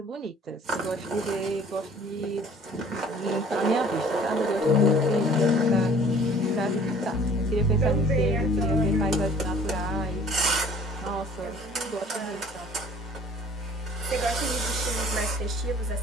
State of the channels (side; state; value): both; normal; correlation 0.52